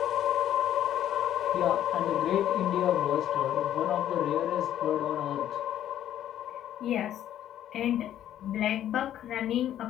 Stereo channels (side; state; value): right; quieter; 11.4 dB